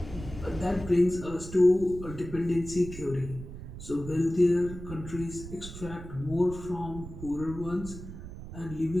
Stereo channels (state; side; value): noise; right; rumble, 11 dB below the sound